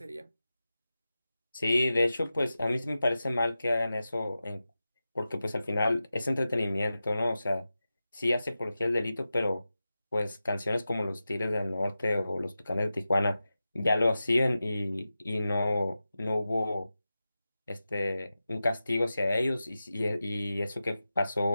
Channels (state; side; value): inverted; both; correlation -0.93